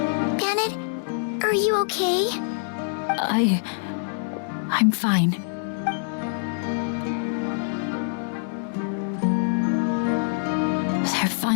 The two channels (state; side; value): silent; right; digital silence